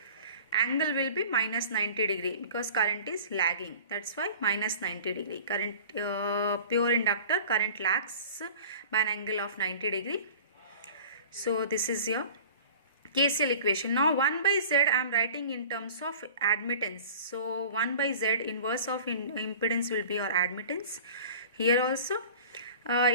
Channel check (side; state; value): both; inverted; correlation -0.43